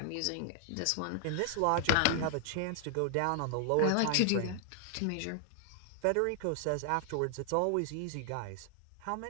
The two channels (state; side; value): different; both; correlation 0.00